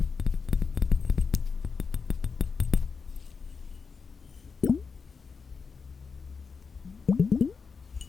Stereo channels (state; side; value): quieter; right; 5.2 dB